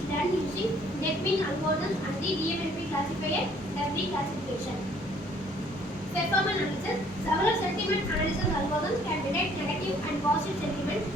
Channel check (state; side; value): normal; both; correlation 0.60